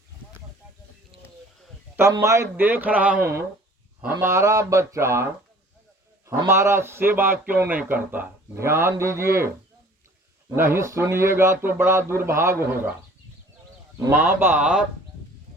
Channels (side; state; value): both; normal; correlation 0.51